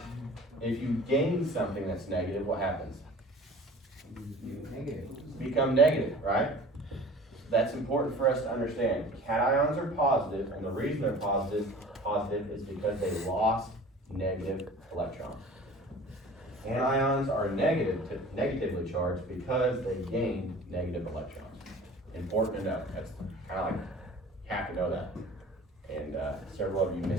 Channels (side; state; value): both; normal; correlation 0.43